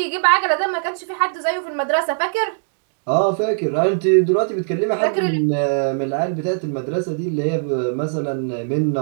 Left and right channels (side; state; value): left; silent; digital silence